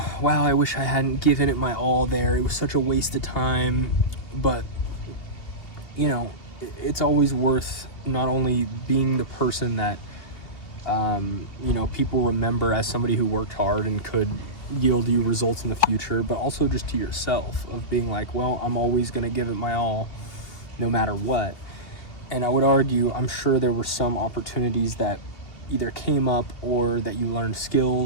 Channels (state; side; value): late; right; 2.7 ms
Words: I wish I hadn't given it my all there. It was such a waste of time. But, it's always worth not only being the person that, people remember as somebody who worked hard and could yield you results in the future, but also just to yourself, of being like, well, I'm always going to give it my all no matter what. And I would argue, I'm sure there were some opportunities that either came up or that you learned